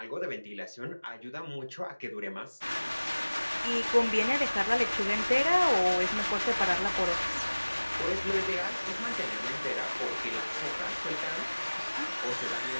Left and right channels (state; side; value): inverted; both; correlation -1.00